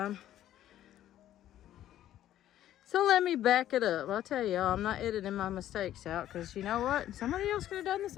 So let me back it up. I'll tell y'all, I'm not editing my mistakes out, because you know what? Somebody else could have done the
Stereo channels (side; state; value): right; quieter; 12.4 dB